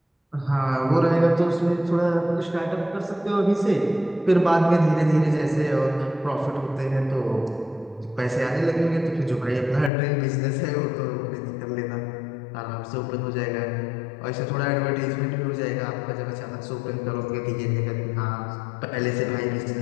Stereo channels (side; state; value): right; drops out; at 9.9 s